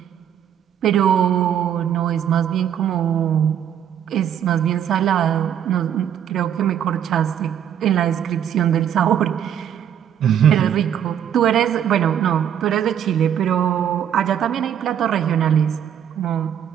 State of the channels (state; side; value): quieter; left; 9.5 dB